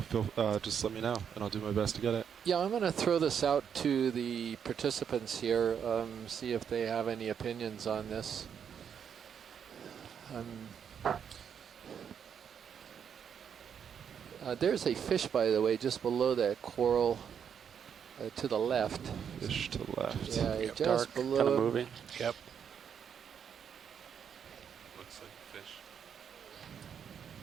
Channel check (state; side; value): quieter; left; 7.8 dB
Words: just let me know, and I'll do my best to get it. Yeah, I'm going to throw this out to the participants here, see if they have any opinions on this. There's a fish, by the way, just below that coral to the left. Fish to the left. Yeah, Yep. just Dark, below. kind of moving. Yep. Looks like a fish.